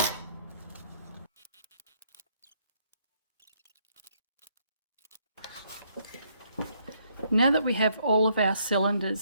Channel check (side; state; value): both; inverted; correlation -0.71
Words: Now that we have all of our